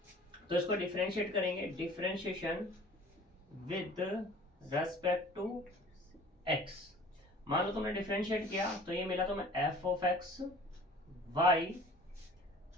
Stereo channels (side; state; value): both; normal; correlation 0.47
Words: तो इसको डिफरेंशिएट करेंगे, differentiation with respect to x। मान लो तुमने डिफरेंशिएट किया तो ये मिला तुम्हें f of x y